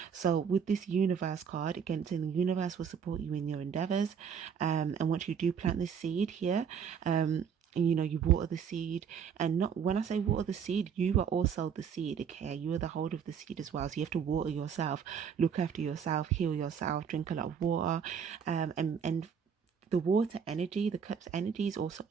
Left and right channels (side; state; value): left; quieter; 7.3 dB